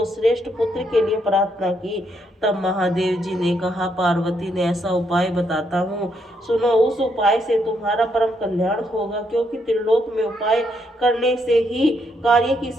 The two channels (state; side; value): normal; both; correlation 0.76